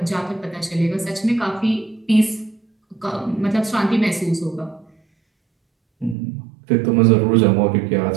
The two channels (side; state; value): left; drops out; at 6.2 s